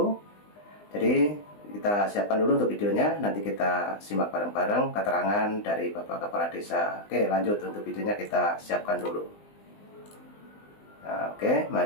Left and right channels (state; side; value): late; right; 20 ms